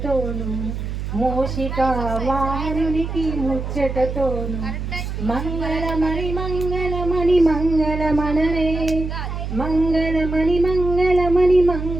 మూషికా వాహనునికి ముచ్చటతోను మంగళమణి మంగళమణి మంగళమనరే మంగళమణి మంగళమణి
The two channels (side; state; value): right; noise; hum, 5 dB below the sound